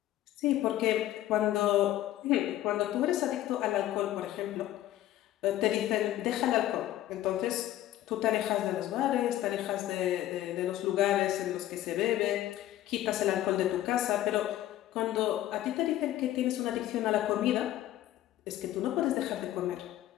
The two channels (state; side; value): quieter; right; 13.7 dB